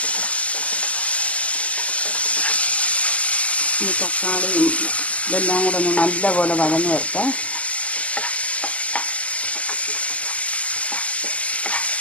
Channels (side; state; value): right; late; 0.069 ms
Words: ഈ തക്കാളിയും ഇതെല്ലാം കൂടെ ഒന്ന് നല്ലപോലെ വഴന്ന് വരട്ടെ.